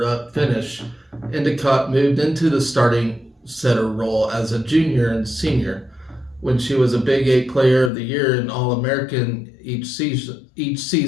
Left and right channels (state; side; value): drops out; right; at 7.9 s